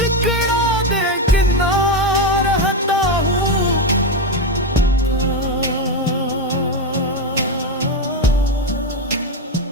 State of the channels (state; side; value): normal; both; correlation 0.10